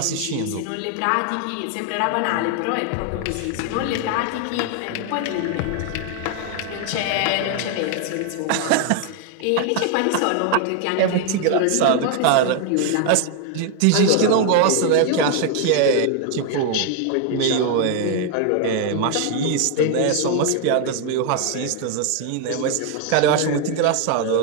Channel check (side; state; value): both; different; correlation 0.00